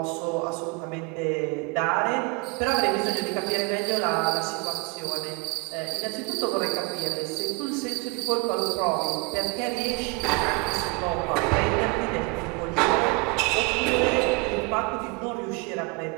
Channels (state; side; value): quieter; left; 27.9 dB